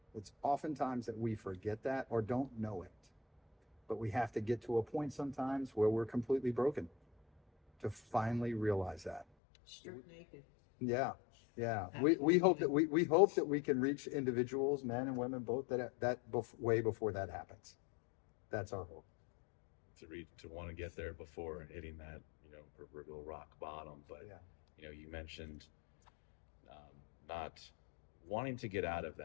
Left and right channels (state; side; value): drops out; right; at 9.2 s